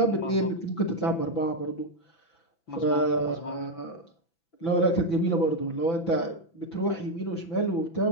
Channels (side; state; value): right; late; 6.0 ms